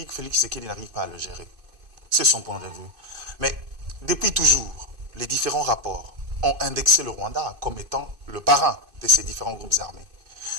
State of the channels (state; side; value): late; left; 2.5 ms